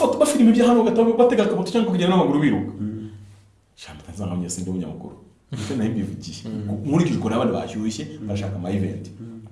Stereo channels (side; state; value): both; identical; correlation 1.00